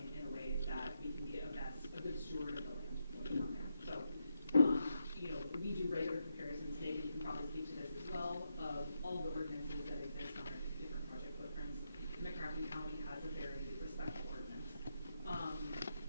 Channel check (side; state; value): both; inverted; correlation -0.83